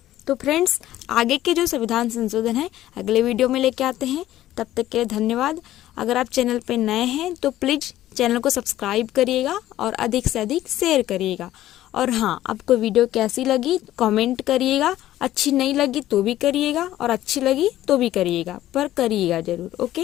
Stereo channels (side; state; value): right; quieter; 13.9 dB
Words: तो फ्रेंड्स आगे के जो संविधान संशोधन है अगले वीडियो में लेके आते हैं। तब तक के लिए धन्यवाद। अगर आप चैनल पे नए हैं तो प्लीज चैनल को सब्सक्राइब करिएगा और अधिक से अधिक शेयर करिएगा। और हाँ, आपको वीडियो कैसी लगी कमेंट करिएगा। अच्छी नहीं लगी तो भी करिएगा, और अच्छी लगी तो भी करिएगा, पर करिएगा जरूर।